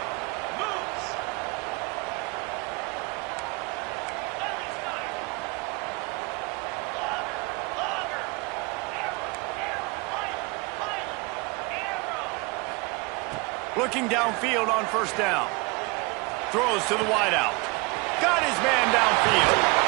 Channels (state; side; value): quieter; left; 27.6 dB